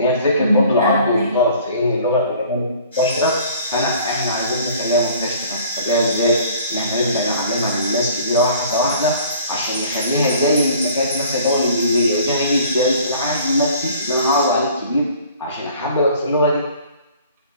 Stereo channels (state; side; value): inverted; both; correlation -0.52